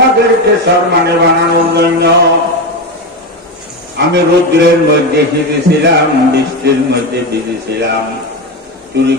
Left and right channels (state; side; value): normal; both; correlation 0.16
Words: সম্মানে বানানোর জন্য আমি রৌদ্রের মধ্যে ভিজেছিলাম, বৃষ্টির মধ্যে ভিজেছিলাম, চুরি